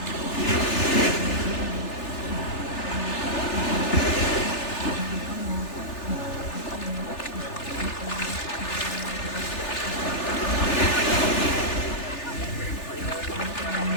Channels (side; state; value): right; late; 3.4 ms